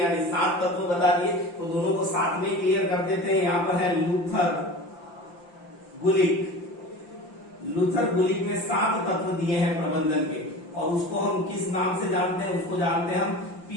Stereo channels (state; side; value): late; right; 5.8 ms